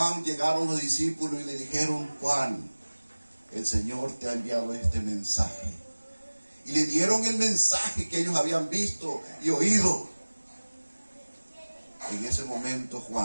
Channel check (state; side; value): inverted; both; correlation -1.00